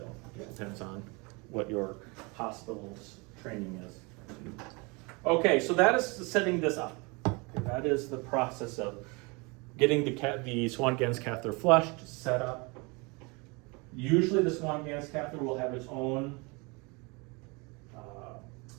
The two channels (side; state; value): left; quieter; 28.5 dB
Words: It depends on what your hospital's training is. Okay, so that is setting this up. Okay, that is the process of getting the Swan-Ganz catheter flushed, set up. Usually the Swan-Ganz catheter will have its own